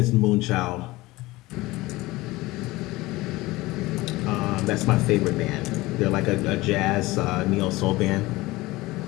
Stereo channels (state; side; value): quieter; right; 19.9 dB